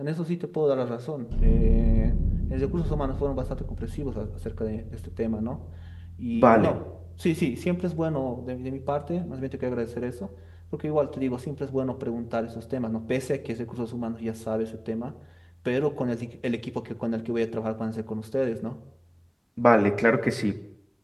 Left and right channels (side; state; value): both; identical; correlation 1.00